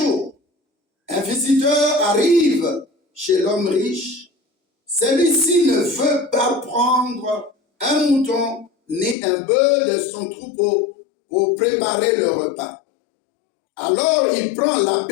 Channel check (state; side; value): drops out; right; at 9.2 s